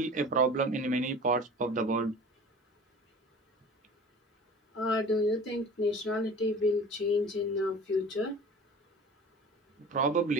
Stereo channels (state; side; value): normal; both; correlation 0.41